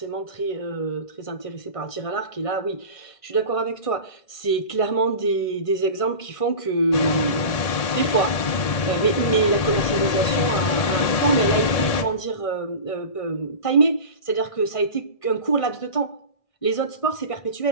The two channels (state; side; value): late; right; 1.8 ms